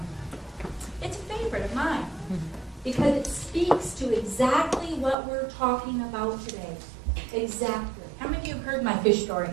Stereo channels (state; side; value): drops out; left; at 5.2 s